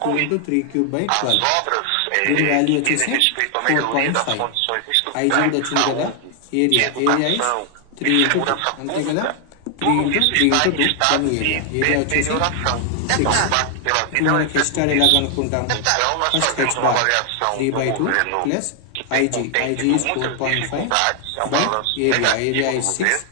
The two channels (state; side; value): different; both; correlation 0.00